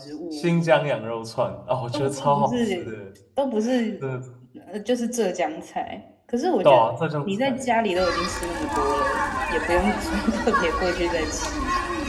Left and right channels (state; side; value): identical; both; correlation 1.00